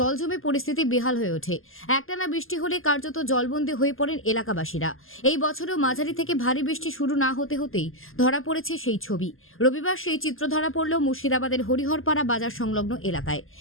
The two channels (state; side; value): late; right; 0.60 ms